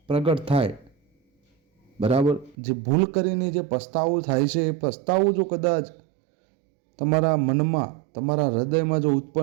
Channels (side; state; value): left; drops out; at 2.6 s